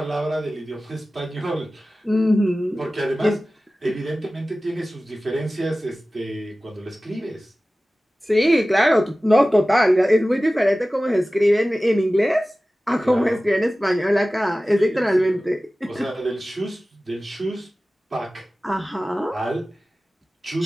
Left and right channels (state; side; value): normal; both; correlation 0.96